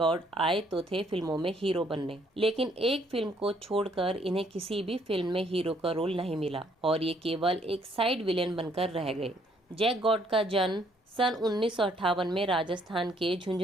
आए तो थे फिल्मों में हीरो बनने, लेकिन एक फिल्म को छोड़कर इन्हें किसी भी फिल्म में हीरो का रोल नहीं मिला और ये केवल एक साइड विलेन बनकर रह गए। जैक गॉर्ड का जन्म सन 1958 में राजस्थान के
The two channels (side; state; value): both; normal; correlation 0.67